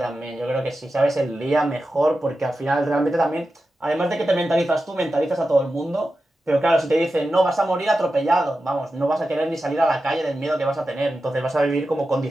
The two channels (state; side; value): normal; both; correlation 0.92